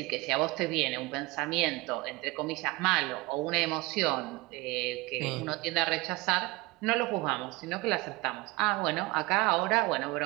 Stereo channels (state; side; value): quieter; left; 22.6 dB